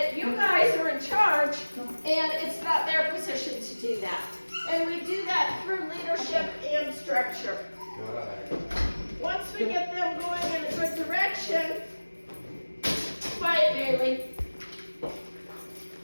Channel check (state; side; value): inverted; both; correlation -1.00